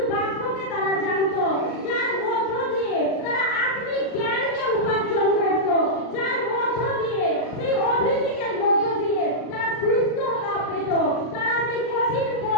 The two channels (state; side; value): late; right; 39 ms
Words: বাক্যকে তারা জানতো, যার মধ্য দিয়ে তারা আত্মিক জ্ঞানকে উপার্জন করত, যার মধ্য দিয়ে সেই অভিষেকের মধ্য দিয়ে তারা সুস্থতা পেত, তারা সেই কঠিন